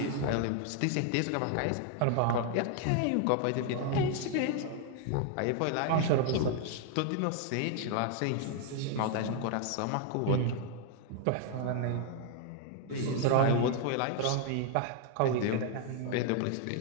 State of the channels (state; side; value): different; both; correlation 0.00